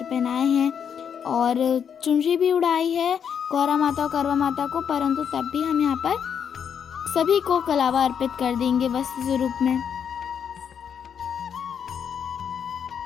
पहनाए हैं और चुनरी भी उड़ाई है गौरा माता और करवा माता को, परंतु तब भी हम यहाँ पर सभी को कलावा अर्पित कर देंगे वस्त्र स्वरूप में।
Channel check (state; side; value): quieter; right; 7.7 dB